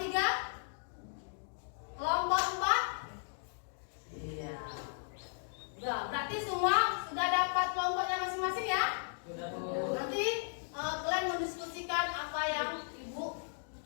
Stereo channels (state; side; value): silent; right; digital silence